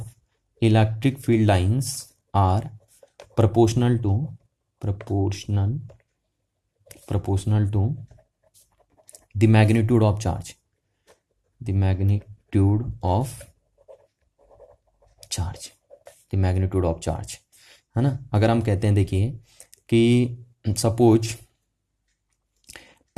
electric field lines are proportional to the magnitude of charge, the magnitude of charge, है ना। अगर हम कहते हैं देखिए कि सपोज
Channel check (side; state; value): both; identical; correlation 1.00